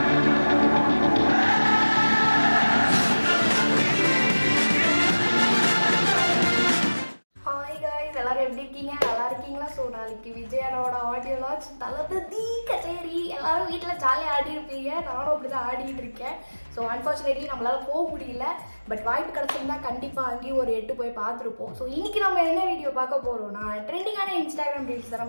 எல்லாரும் எப்படி இருக்கீங்க? நல்லா இருக்கீங்களா? ஸோ நாளைக்கு விஜயனோட ஆடியோ லான்ச் தளபதி கச்சேரி எல்லாரும் வீட்டில் ஜாலியாக ஆடி இருப்பீங்க. நானும் அப்படி தான் ஆடிட்டு இருக்கேன். ஸோ அன்ஃபார்ச்சுனேட்லி நம்மளால போக முடியல. பட் வாய்ப்பு கிடச்சிருந்தா கண்டிப்பாக அங்கேயும் ஒரு 8 போய் பார்த்துருப்போம். ஸோ இன்னைக்கு நம்ம என்ன வீடியோ பார்க்க போகிறோம்னா ட்ரெண்டிங்கான இன்ஸ்டாகிராம் ரீல்ஸ் தான்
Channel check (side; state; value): both; inverted; correlation -1.00